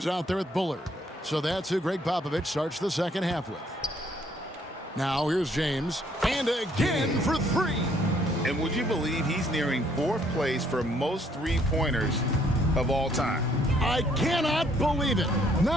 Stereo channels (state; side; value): normal; both; correlation 0.66